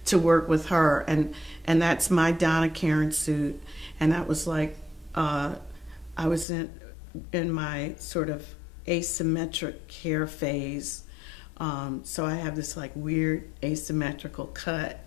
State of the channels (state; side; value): drops out; right; at 6.5 s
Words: to work with her, and that's my Donna Karen suit, and that was like I was in my sort of asymmetric hair phase, so I have this like weird asymmetrical cut,